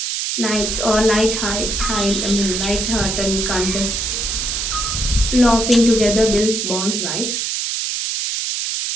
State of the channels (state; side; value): noise; right; hiss, 1 dB below the sound